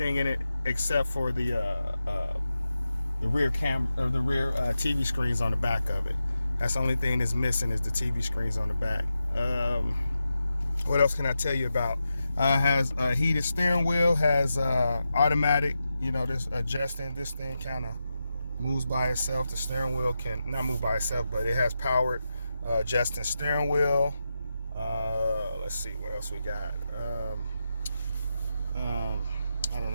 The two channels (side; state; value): both; inverted; correlation -0.89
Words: in it except for the rear TV screens on the back of it. That's the only thing that's missing is the TV screens on the back. What else can I tell you about? Has a heated steering wheel, has automatic, this adjusting. This thing kind of moves by itself. The steering wheel can not move by itself, but it has powered adjusting steering wheel. Let's see what else we got. I